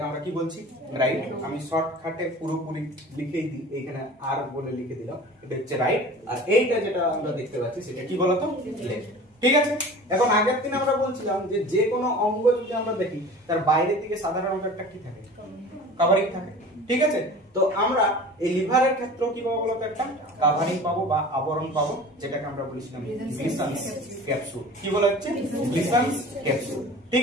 আমরা কি বলছি, রাইট। আমি শর্টকাটে পুরোপুরি লিখেই দিই, এইখানে আর বলে লিখে দিলাম, এটা হচ্ছে রাইট। আর এইটা যেটা আমরা দেখতে পাচ্ছি সেটা কি বলতো, লেফট। ঠিক আছে, এখন আগের দিন আমরা বলছিলাম যে যে কোনো অঙ্গ যদি আমরা দেখি তার বাইরের দিকে সাধারণত একটা কি থাকে, কভারিং থাকে। ঠিক আছে, তো আমরা এই লিভারের ক্ষেত্রে কি পাবো বলতো, একটা কভারিং পাবো বা আবরণ পাবো, যেটাকে আমরা বলেছিলাম গ্লিসান্স ক্যাপসুল। কি বলা হচ্ছে, গ্লিসান্স ক্যাপসুল। ঠিক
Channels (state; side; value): normal; both; correlation 0.40